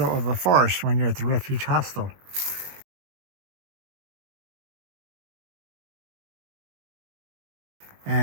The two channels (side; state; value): left; late; 21 ms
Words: of a forest when you're at the Refuge Hostel.